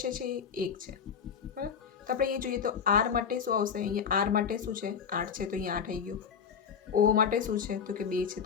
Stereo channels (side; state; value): right; quieter; 6.9 dB